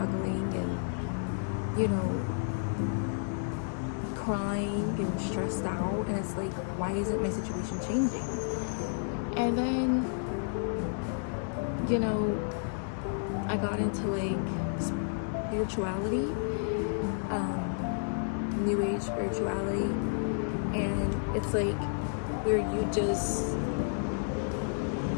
and crying and stressed out, and it's like, why isn't my situation changing? And then, you know, I got into like spirituality, new age spirituality, and it's like where you just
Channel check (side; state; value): right; silent; digital silence